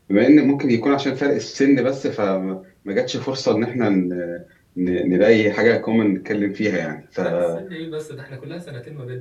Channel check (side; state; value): both; identical; correlation 1.00